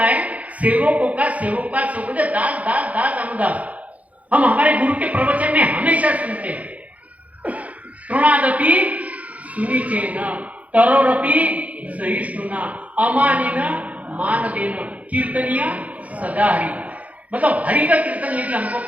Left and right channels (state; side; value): late; left; 0.069 ms